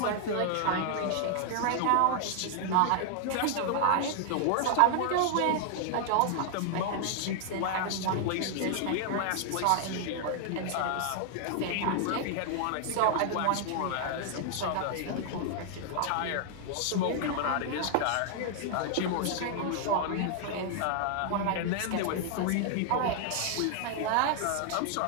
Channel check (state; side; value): different; both; correlation 0.00